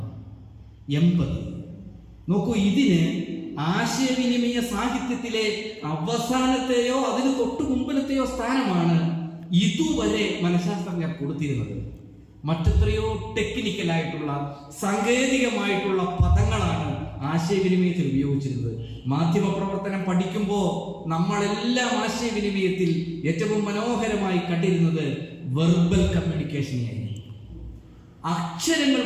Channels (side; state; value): both; identical; correlation 1.00